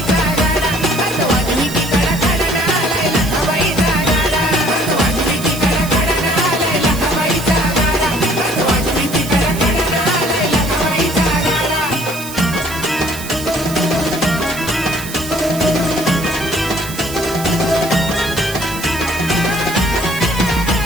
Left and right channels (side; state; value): right; noise; hiss, 11 dB below the sound